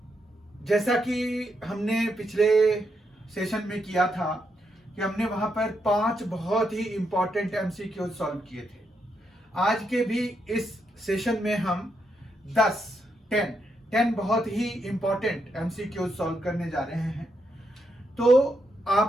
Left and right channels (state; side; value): normal; both; correlation 0.81